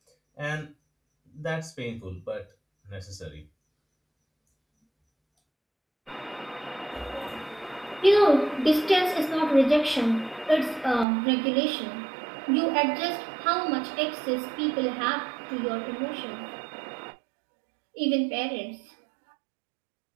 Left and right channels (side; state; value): left; drops out; at 11.1 s